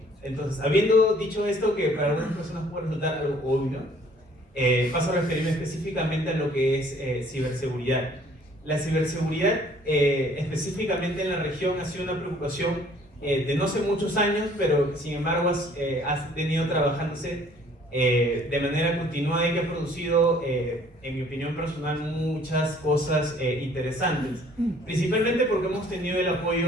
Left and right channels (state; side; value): normal; both; correlation 0.57